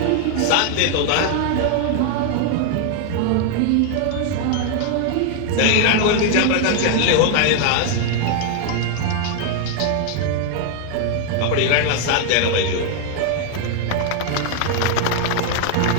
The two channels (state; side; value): different; both; correlation 0.00